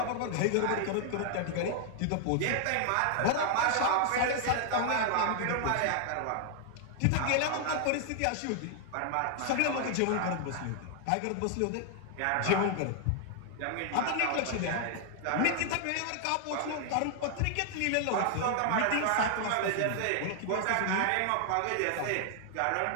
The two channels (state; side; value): different; both; correlation 0.00